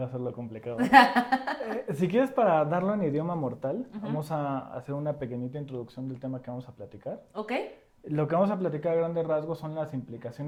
a ser lo complicado. Si quieres, para darlo en idioma mortal, vamos a hacer una pequeñita introducción del tema que vamos a platicar. ¿Ok? Lo que vamos a platicar a grandes rasgos son las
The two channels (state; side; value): identical; both; correlation 1.00